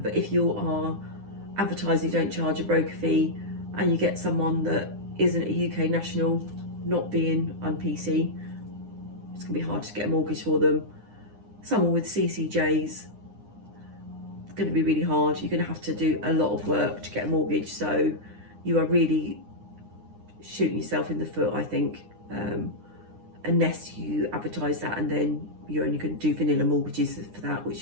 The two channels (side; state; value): left; late; 9.8 ms